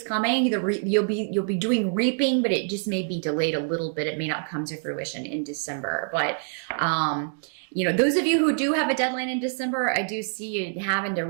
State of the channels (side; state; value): left; silent; digital silence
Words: coming. You'll be doing reaping, but it just may be delayed a little bit. It may not come to fruition in December. But those of you who do have a deadline in December, I do see you having to